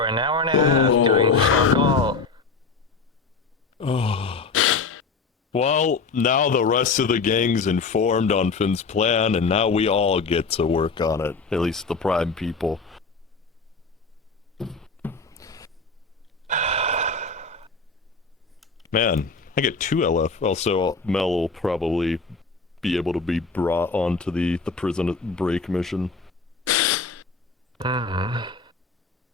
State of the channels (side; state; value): right; quieter; 4.4 dB